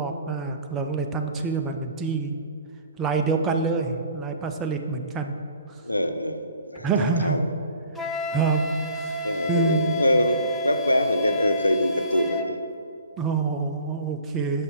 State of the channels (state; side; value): inverted; both; correlation -0.49